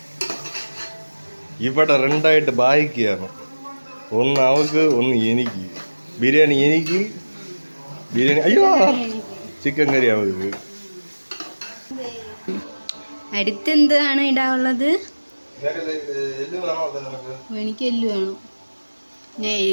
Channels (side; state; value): both; inverted; correlation -1.00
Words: ഇവിടെ രണ്ടായിട്ട് ബായിക്കുകയാണ്, ഒന്ന് അവൾക്ക് ഒന്ന് എനിക്ക്. ബിരിയാണി എനിക്ക്, ബിരിയാണി അയ്യോ ചിക്കൻ കറി അവൾക്ക്. അടുത്തെന്താണ് ഇടാനുള്ളത്? എനിക്ക് എല്ല് വേണം, ഞാൻ